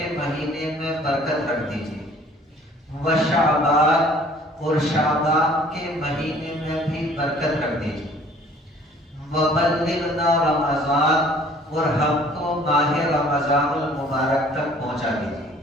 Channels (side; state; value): both; normal; correlation 0.54